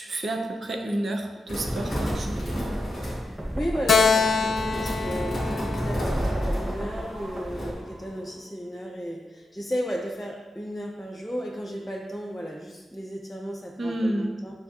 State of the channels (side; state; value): both; normal; correlation 0.87